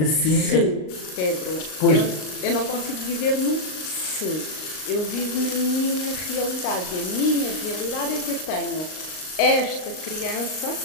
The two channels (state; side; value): late; right; 38 ms